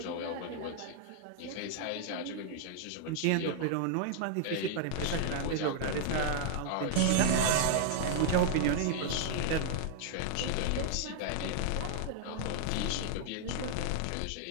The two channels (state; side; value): different; both; correlation -0.01